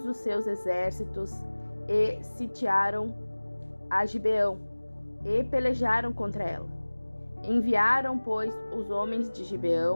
os seus exércitos, e sitiaram a Gibeão, e pelejaram contra ela. Enviaram, pois, os homens de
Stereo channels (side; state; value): both; inverted; correlation -1.00